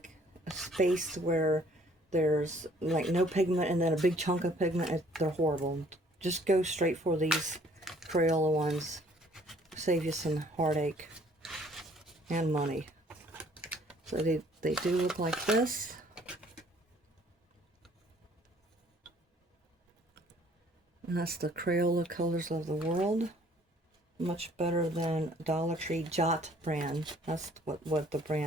a space where there's like no pigment and then a big chunk of pigment. They're horrible. Just go straight for these Crayola ones. Save you some heartache and money. So they do look like this. And that's the Crayola Colors of the World. Much better than Dollar Tree Jot brand. That's what the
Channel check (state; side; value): normal; both; correlation 0.59